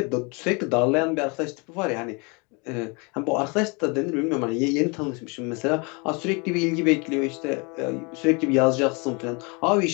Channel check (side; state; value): right; quieter; 30.6 dB